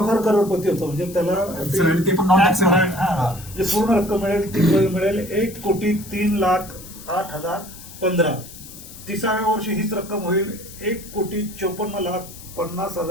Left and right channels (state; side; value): noise; left; hiss, 17 dB below the sound